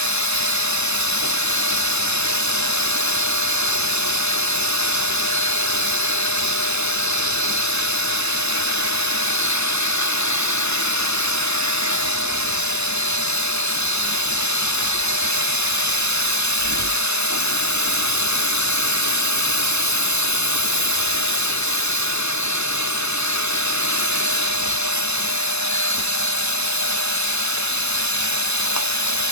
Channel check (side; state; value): right; late; 0.80 ms